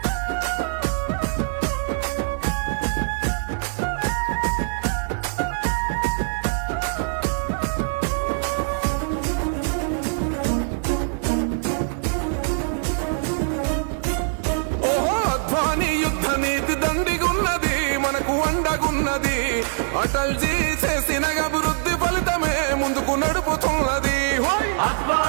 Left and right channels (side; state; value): left; silent; digital silence